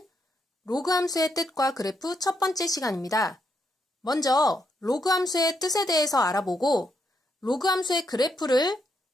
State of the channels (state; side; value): normal; both; correlation 0.79